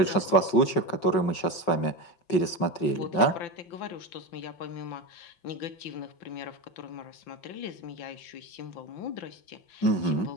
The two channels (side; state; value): right; late; 5.3 ms